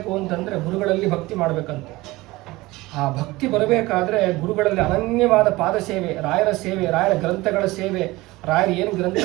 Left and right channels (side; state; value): left; quieter; 20.1 dB